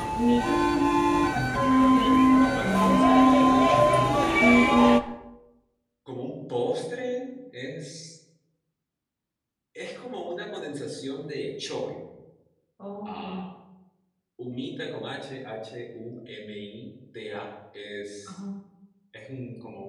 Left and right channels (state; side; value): identical; both; correlation 1.00